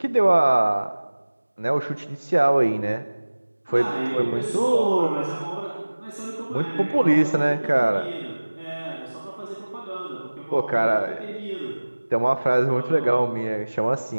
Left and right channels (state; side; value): inverted; both; correlation -1.00